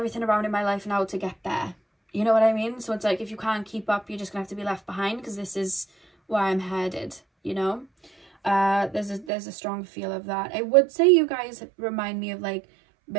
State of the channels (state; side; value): drops out; left; at 9.2 s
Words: around in my life now to get there. You know what I mean? So it's like, if you can't keep up, you're just gonna have to be left behind, because this is where I'm headed, you know? There's a strong feel of that. I would say you guys remind me of like